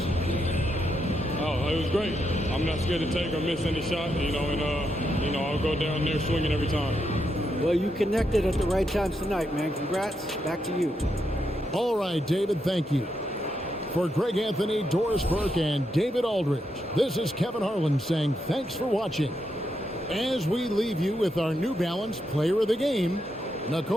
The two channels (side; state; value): both; normal; correlation 0.82